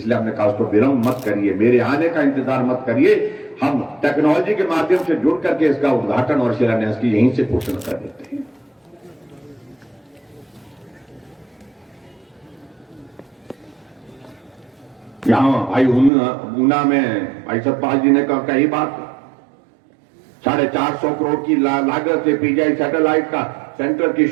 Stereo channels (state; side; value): drops out; left; at 16.1 s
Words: हमने कहा उसको विलंब मत करिए, मेरे आने का इंतजार मत करिए, हम टेक्नोलॉजी के माध्यम से जुड़ करके इसका उद्घाटन और शिलान्यास की यहीं से घोषणा कर देते हैं। यहां भाई ऊना में भाई सतपाल जी ने कही बात, 450 करोड़ की लागत से पीजीआई सैटेलाइट का सेंटर की